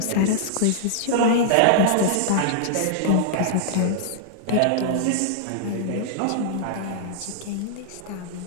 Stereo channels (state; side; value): different; both; correlation -0.01